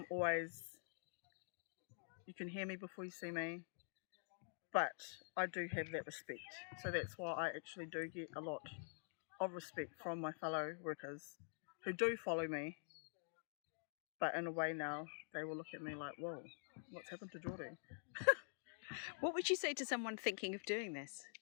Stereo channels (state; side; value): silent; right; digital silence